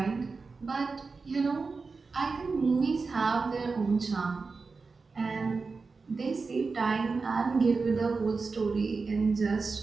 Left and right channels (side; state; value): left; quieter; 4.4 dB